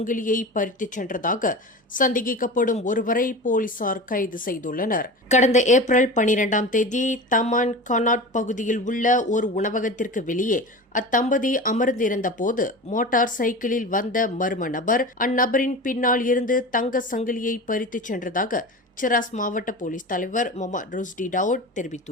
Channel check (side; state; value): both; normal; correlation 0.31